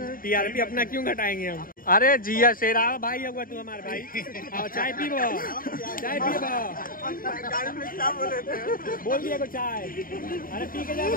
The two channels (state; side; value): late; right; 0.41 ms